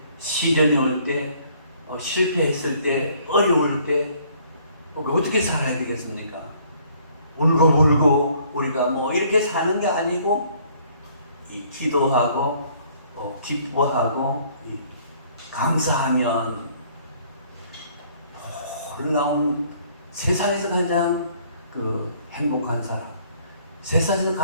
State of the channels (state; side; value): inverted; both; correlation -0.61